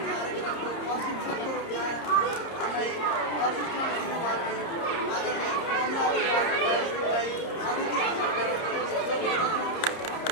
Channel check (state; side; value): late; right; 30 ms